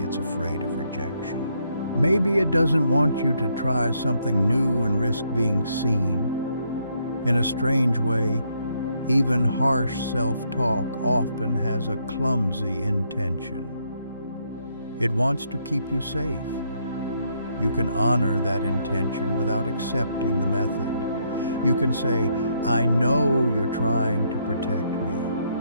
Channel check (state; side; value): inverted; both; correlation -0.73